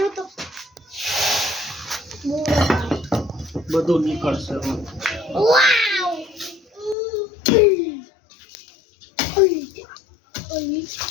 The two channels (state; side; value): drops out; right; at 7.0 s